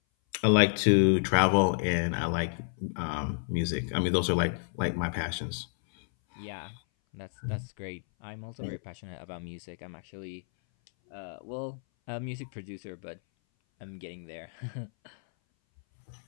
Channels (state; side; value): silent; right; 57 dB below the other